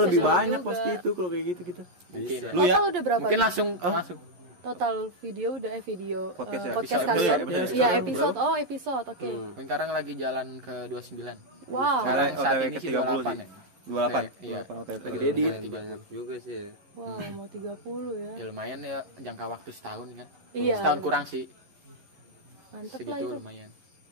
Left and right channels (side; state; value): left; late; 11 ms